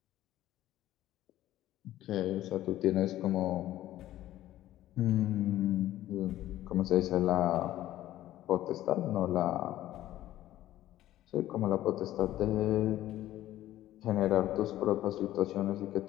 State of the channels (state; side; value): quieter; right; 14.0 dB